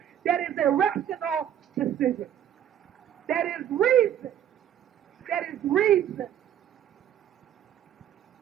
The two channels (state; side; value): quieter; left; 10.3 dB